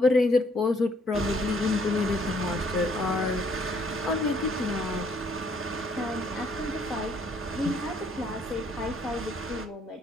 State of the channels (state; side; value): normal; both; correlation 0.66